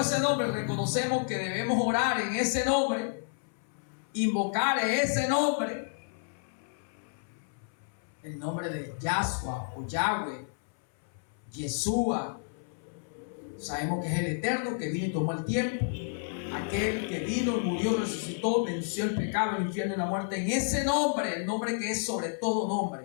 ese nombre, reconocemos que debemos orar en ese nombre, invocar ese nombre, el nombre de Yahshua o Yahweh, Yeshua. Sabemos que es el Eterno que vino y tomó el tiempo, aquel que vino, murió, resucitó, venció el pecado, el infierno y la muerte, en ese nombre, el nombre que es sobre todo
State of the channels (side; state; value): right; silent; 57 dB below the other